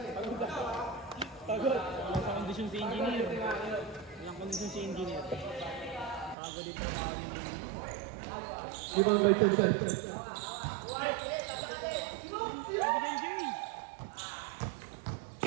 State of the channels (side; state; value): left; drops out; at 6.4 s